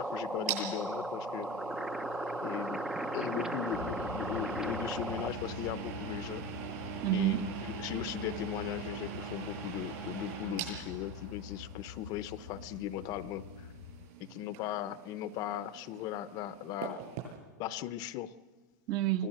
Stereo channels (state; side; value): normal; both; correlation 0.24